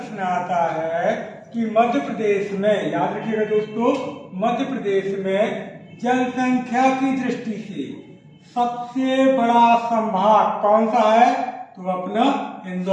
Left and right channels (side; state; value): both; identical; correlation 1.00